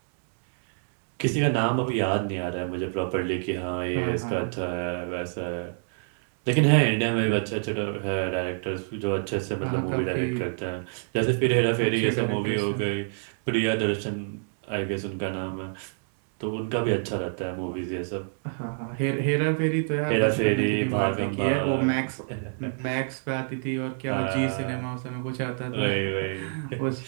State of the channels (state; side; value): silent; left; digital silence